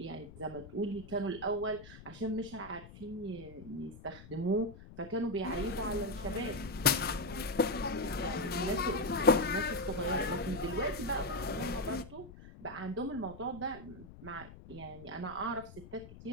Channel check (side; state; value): left; noise; rumble, 17 dB below the sound